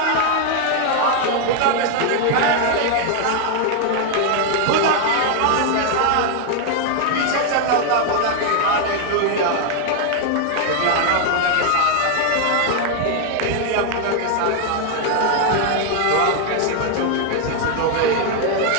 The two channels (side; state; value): both; different; correlation 0.00